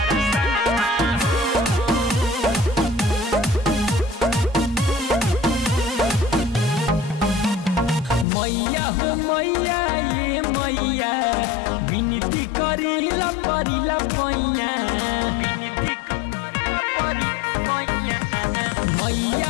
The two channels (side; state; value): right; drops out; at 8.2 s